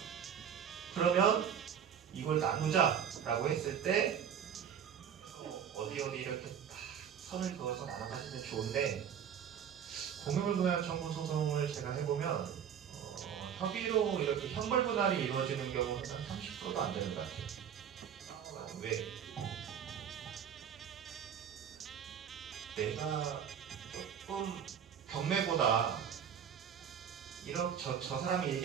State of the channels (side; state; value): left; quieter; 8.3 dB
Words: 그러면 이걸 나누자 라고 했을 때 어디 이렇게 선을 그어서 나눠가시면 좋은데 공유물분할 청구 소송을 제가 해보면 협의로 이렇게 형벌분할이 이루어지는 경우는 한 30%도 안 되는 것 같아요. 왜? 내가 조금 경매보다 저 사람이